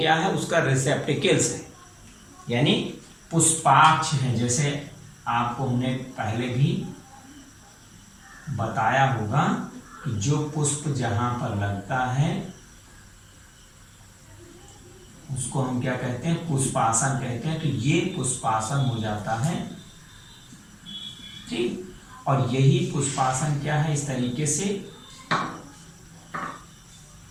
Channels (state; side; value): identical; both; correlation 1.00